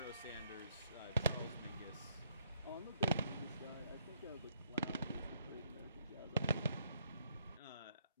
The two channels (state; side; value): inverted; both; correlation -0.71